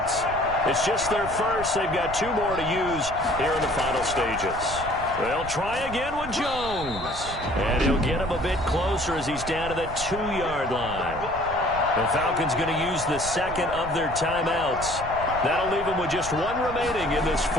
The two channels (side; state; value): right; noise; rumble, 11 dB below the sound